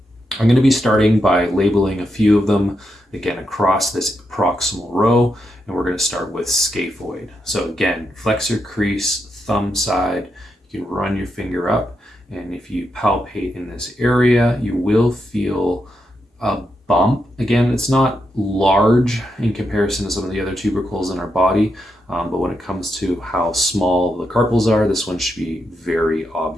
I'm going to be starting by labeling a few of them, again, across this proximal row, and we're going to start with scaphoid. So again, flexor crease, thumb side, you can run your finger up, and if you palpate in this area, you will feel a bump. Again, it's not large in comparison to some of the other tubercles in our body, but when it comes to how small the carpals are, this one should be very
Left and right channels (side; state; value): both; normal; correlation 0.84